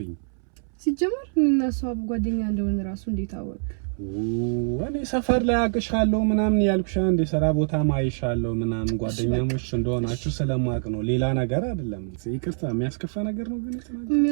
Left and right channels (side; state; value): left; silent; 62 dB below the other